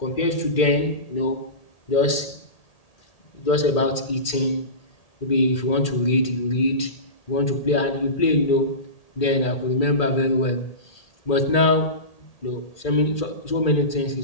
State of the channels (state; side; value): late; right; 1.8 ms